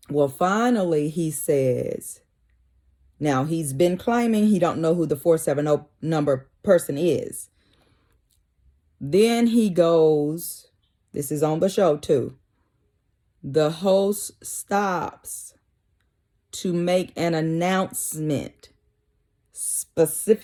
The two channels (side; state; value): both; identical; correlation 1.00